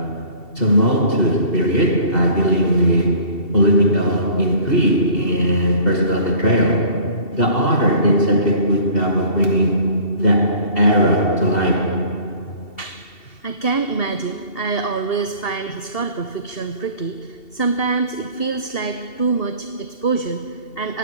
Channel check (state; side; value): late; right; 2.7 ms